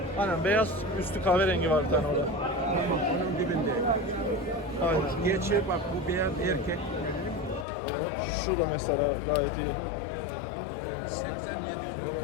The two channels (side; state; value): right; drops out; at 7.7 s